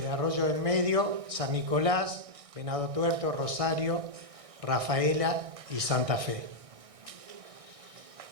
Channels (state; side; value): late; left; 1.6 ms